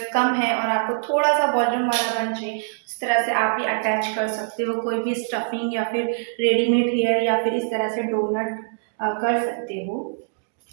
कम हैं और आपको थोड़ा सा वॉल्यूम वाला बन चाहिए, इस तरह से आप भी अटैच कर सकते हो कोई भी स्टफिंग या फिर रेडीमेड हेयर या फिर इस तरह से डोनट कर सकते हो।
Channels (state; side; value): silent; left; digital silence